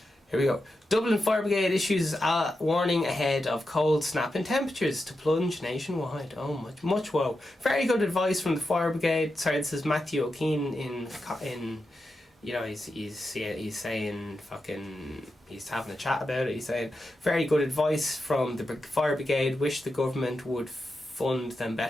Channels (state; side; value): normal; both; correlation 0.89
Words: here we go. Dublin Fire Brigade issues a warning ahead of cold snap in temperatures to plunge nationwide. Oh, much woe. Very good advice from the Fire Brigade. Sorry, this is Matthew O'Keefe in you know, he's saying fucking, he's having a chat about it. He's saying very good advice from the Fire Brigade. Wish the government would fund them